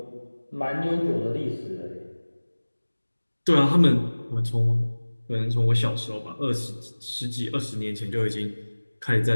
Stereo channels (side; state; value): both; inverted; correlation -1.00